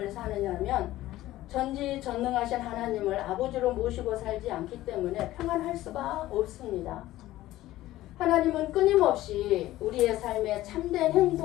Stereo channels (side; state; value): right; quieter; 15.6 dB